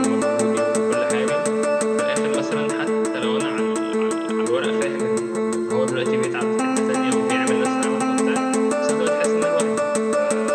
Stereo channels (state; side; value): identical; both; correlation 1.00